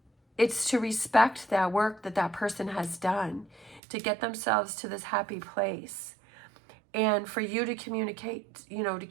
it's to respect that work that person has done to get themselves to this happy place. And for you to communicate, you know, to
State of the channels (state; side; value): drops out; left; at 3.8 s